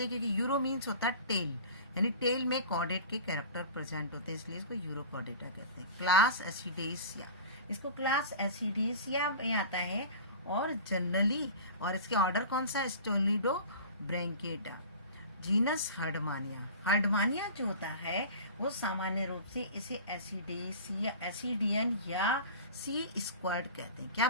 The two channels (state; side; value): inverted; both; correlation -0.37